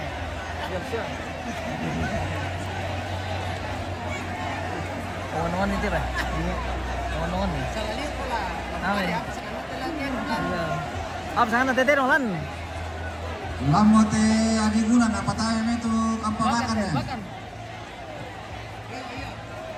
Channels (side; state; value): both; identical; correlation 1.00